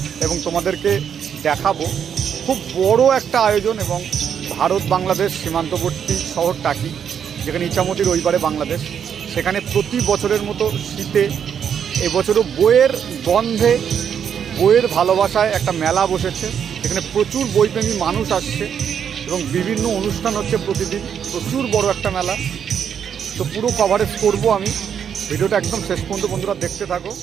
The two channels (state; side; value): quieter; left; 8.0 dB